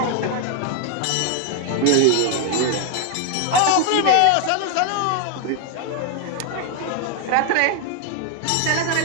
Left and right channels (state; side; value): different; both; correlation 0.01